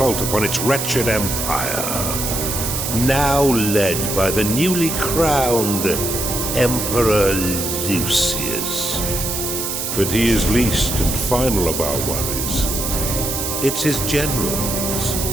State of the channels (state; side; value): noise; right; hiss, 3 dB below the sound